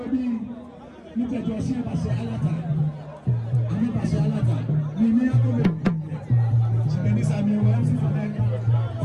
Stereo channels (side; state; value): both; identical; correlation 1.00